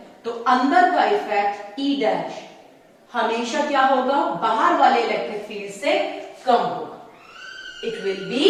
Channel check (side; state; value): both; identical; correlation 1.00